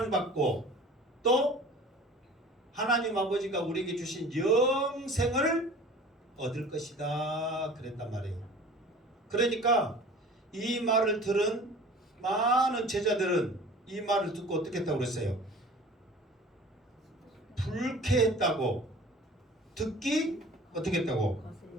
또 하나님 아버지가 우리에게 주신 영생을 얻을 것이다 그랬단 말이에요. 그러니까 이 말을 들은 많은 제자들은 이 말을 듣고 어떻게 했다고 그랬어요? 불쾌했다고, 듣기 어떻게 했다고?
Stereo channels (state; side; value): normal; both; correlation 0.44